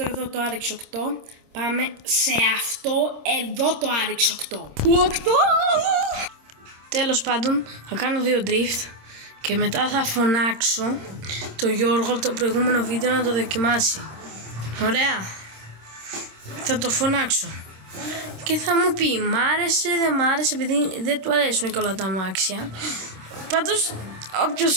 το RX 8. Πάμε σε αυτό εδώ το RX 8. 8! Τέλος πάντων, θα κάνω 2 drift και μετά θα φωνάξω τον Γιώργο από το προηγούμενο βίντεο να το δοκιμάσει. Ωραία. Θα το φωνάξω και θα μου πει μ' άρεσε, δεν μ' άρεσε, επειδή δεν του αρέσουν και όλα τα αμάξια. Πάντως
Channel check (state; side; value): late; left; 26 ms